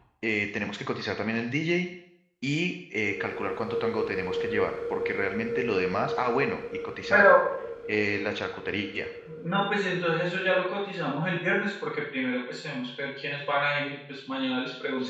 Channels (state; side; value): identical; both; correlation 1.00